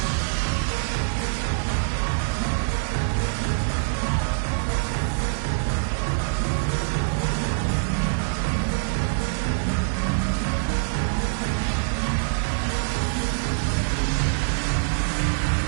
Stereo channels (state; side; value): silent; left; 62 dB below the other